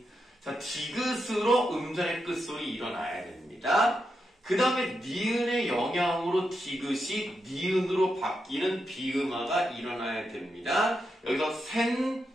자, 디귿으로 음절의 끝소리 일어나야 됩니다. 그 다음에 니은의 영향으로 디귿이 니은으로 바뀌는 비음화가 일어나야 됩니다. 여기서 센,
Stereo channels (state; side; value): normal; both; correlation 0.85